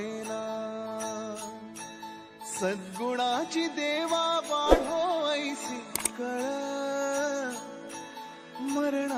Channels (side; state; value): both; identical; correlation 1.00